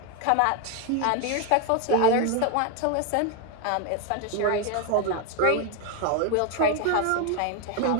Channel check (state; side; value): different; both; correlation 0.01